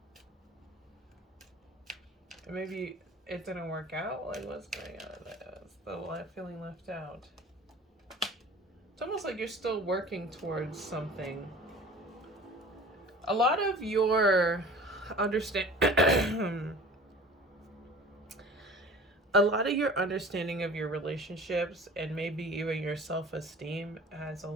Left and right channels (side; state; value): both; normal; correlation 0.43